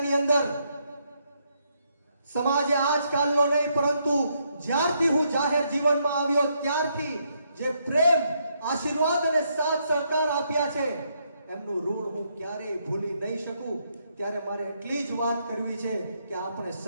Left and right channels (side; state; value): both; inverted; correlation -0.76